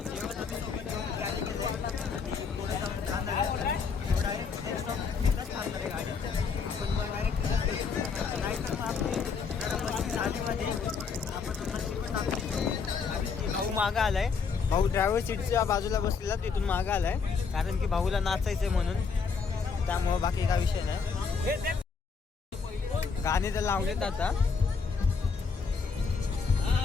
भाऊ मागं आलाय. भाऊ ड्रायव्हर सीटच्या बाजूला बसलेला, तिथून मागं आलाय कारण की भाऊला नाचायचंय म्हणून. त्यामुळं बाकी काय विषय नाही. गाणे तर लावलेत आता.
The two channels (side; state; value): right; quieter; 5.4 dB